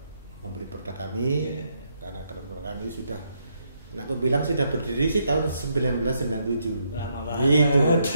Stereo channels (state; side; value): inverted; both; correlation -0.77